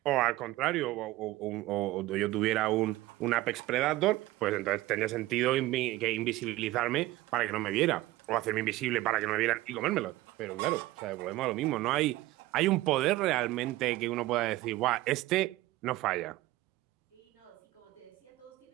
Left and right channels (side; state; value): left; quieter; 17.6 dB